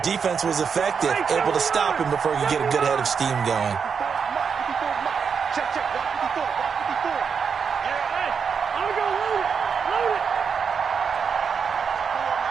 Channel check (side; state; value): left; quieter; 6.3 dB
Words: was effective, able to stop him before he could get a good head of steam going.